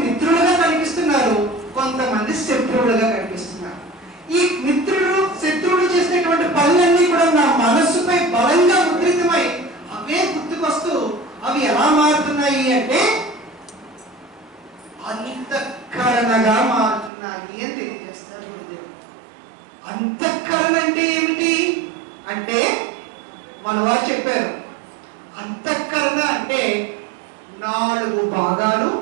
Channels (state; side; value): drops out; left; at 17.1 s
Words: మిత్రులుగా కనిపిస్తున్నారు, కొంతమంది శత్రువులుగా కనిపిస్తున్నారు. ఈ మిత్రులు శత్రువులు చేసినటువంటి పనులన్నీ కూడా నా మనస్సుపై బలంగా ముద్రితమై అవే గుర్తుకొస్తూ అవి ఎలా మారుతున్నాయి అంటే అంతఃకరణగా మారుతున్నాయి అని తెలియజేస్తారు గురుదేవుడు. అంతఃకరణ అంటే ఏమిటి అంటే మన వారు చెప్పారు, అంతఃకరణ అంటే 4 భాగాలు